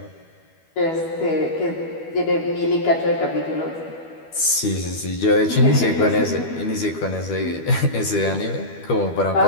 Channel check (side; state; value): right; late; 12 ms